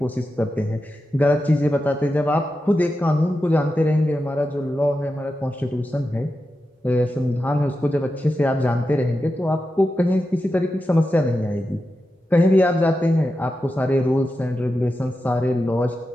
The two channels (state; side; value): normal; both; correlation 0.90